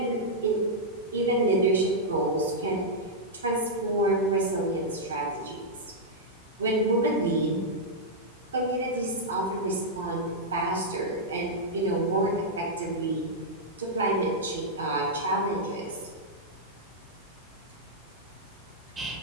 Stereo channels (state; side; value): normal; both; correlation -0.07